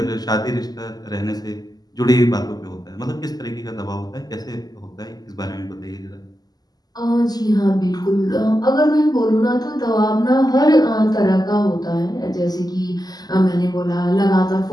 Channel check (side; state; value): right; late; 0.19 ms